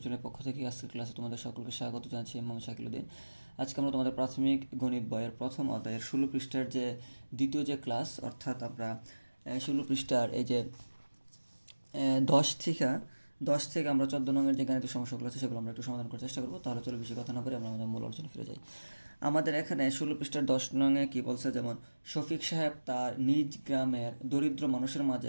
চ্যানেলের পক্ষ থেকে আজকের ক্লাসে তোমাদের সকলকে স্বাগত জানাচ্ছি। মোহাম্মদ শাকিলউদ্দিন। আজকে আমরা তোমাদের প্রাথমিক গণিত বইয়ের প্রথম অধ্যায়ের 16 পৃষ্ঠার যে দ্বিতীয় যে ক্লাস, অর্থাৎ আমরা 16 পৃষ্ঠার এই যে 10 থেকে আমরা 14 নঙের যে গাণিতিক সমস্যাগুলো আছে সেগুলো আমরা একটু সমাধান করার চেষ্টা করবো। তাহলে চলো বেশি কথা না বলে আমরা আমাদের মূল আলোচনা ফিরে যাই। আমাদের এখানে 16 পৃষ্ঠার 10 নঙে কী বলছে, যেমন শফিক সাহেব তার নিজ গ্রামের দরিদ্র মানুষের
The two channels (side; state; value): both; inverted; correlation -1.00